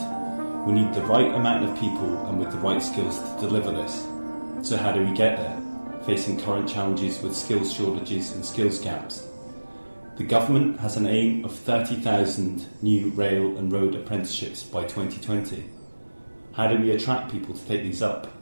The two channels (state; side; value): inverted; both; correlation -1.00